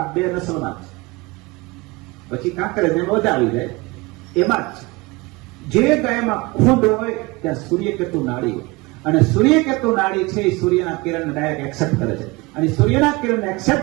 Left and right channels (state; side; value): quieter; left; 23.8 dB